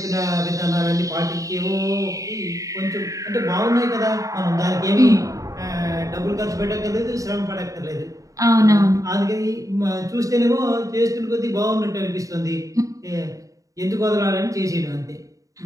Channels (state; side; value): late; left; 0.16 ms